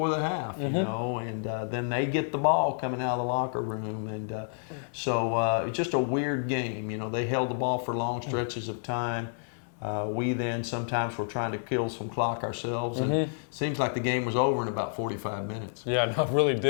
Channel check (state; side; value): silent; right; 58 dB below the other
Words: the half, and then they get the ball coming out of the locker room. And so it's just a weird game. They held the ball for long stretches of time. We then sometimes were trying to kill some clock ourselves, and it seems like the game was over in about 45 minutes. Yeah, no, it really